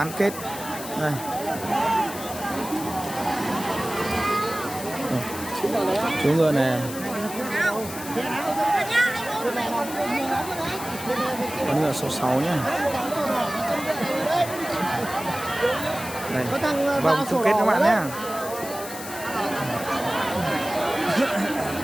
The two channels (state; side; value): noise; left; hiss, 11 dB below the sound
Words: kết. Đây. Chú ngựa này, con ngựa số 6 nhé. Đây, vòng chung kết các bạn nhé.